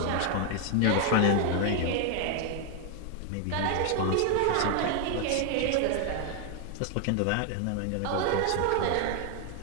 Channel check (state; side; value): different; both; correlation 0.00